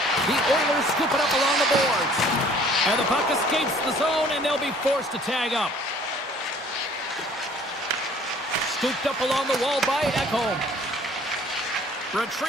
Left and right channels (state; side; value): normal; both; correlation 0.55